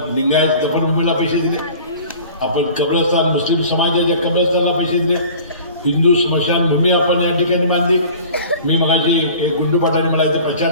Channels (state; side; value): inverted; both; correlation -0.44